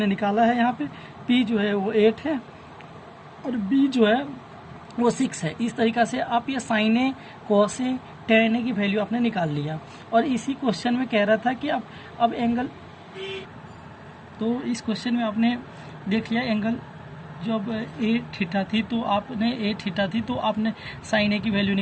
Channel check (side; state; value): both; identical; correlation 1.00